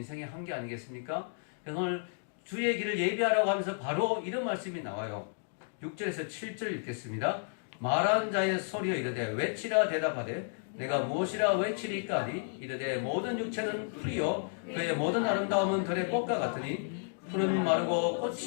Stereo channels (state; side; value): silent; right; digital silence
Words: 한계 아니겠습니까? 그래서 오늘 주의 길을 예비하라고 하면서 바로 이런 말씀이 나와요. 6절에서 7절 읽겠습니다. 말한 자의 소리여 이르되 외치라 대답하되 내가 무엇이라 외치리까 하리. 이르되 모든 육체는 풀이요 그의 모든 아름다움은 들의 꽃과 같으니 푸른 마르고